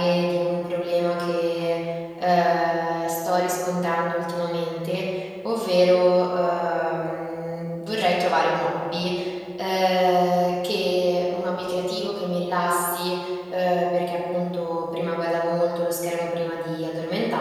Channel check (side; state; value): both; identical; correlation 1.00